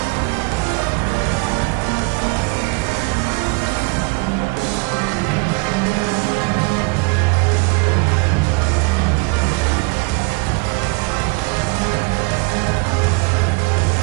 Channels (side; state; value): left; quieter; 29.4 dB